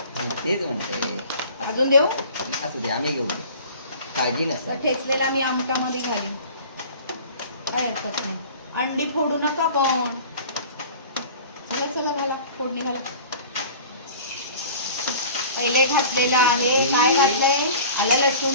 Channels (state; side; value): inverted; both; correlation -0.43